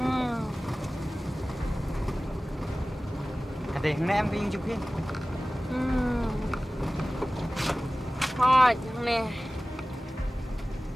kata yang em kayung jupri. Hot nih.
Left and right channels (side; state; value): both; normal; correlation 0.97